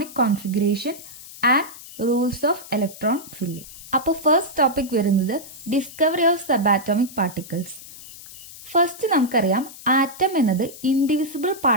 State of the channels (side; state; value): left; noise; hiss, 16 dB below the sound